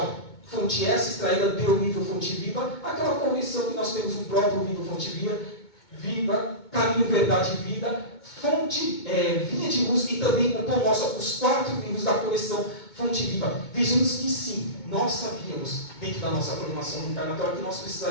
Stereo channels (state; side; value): late; right; 2.2 ms